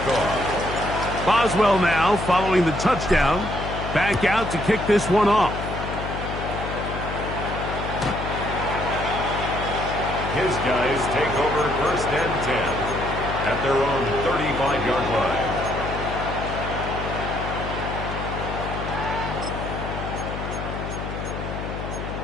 off. Boswell now following the touchdown. Back out to kick this one off. His guys take over 1st and 10 at their own 35-yard line.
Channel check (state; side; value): noise; left; hum, 6 dB below the sound